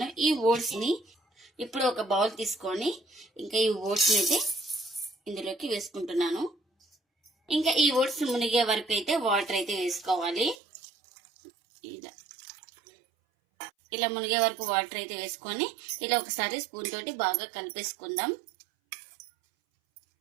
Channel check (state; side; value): drops out; left; at 10.6 s